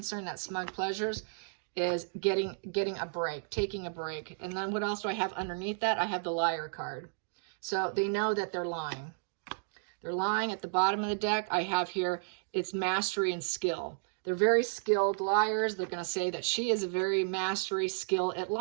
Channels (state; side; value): silent; left; digital silence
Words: that smug pleasures is getting a break, taking a break. And then what else do I have underneath that? I have the liar card. So they know that they're lying. They're lying. At the bottom of the deck, I have here, it's mastery and skill. They're very skilled liars. They're going to say that she is a very mastery skill at